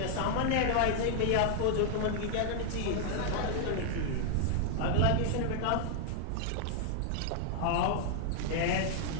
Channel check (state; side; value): different; both; correlation -0.01